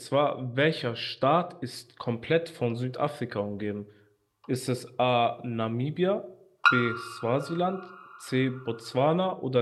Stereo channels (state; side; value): identical; both; correlation 1.00